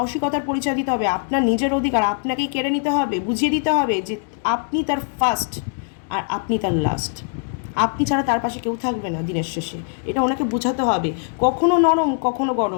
পরিচয় দিতে হবে, আপনার নিজের অধিকার আপনাকেই কেড়ে নিতে হবে, বুঝিয়ে দিতে হবে যে আপনি তার ফার্স্ট আর আপনি তার লাস্ট, আপনি ছাড়া তার পাশে কেউ থাকবে না দিনের শেষে, এটা ওনাকে বোঝাতে হবে। কখনো নরম কখনো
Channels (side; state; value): right; silent; 62 dB below the other